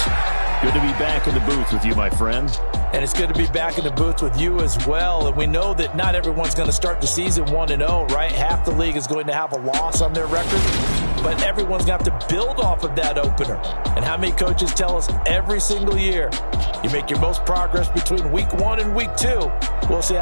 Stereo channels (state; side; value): inverted; both; correlation -1.00